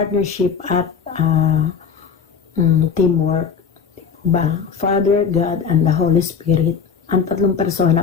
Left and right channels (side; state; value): right; quieter; 6.3 dB